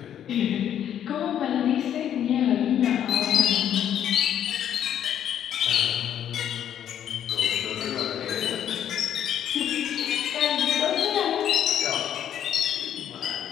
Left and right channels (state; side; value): quieter; right; 10.0 dB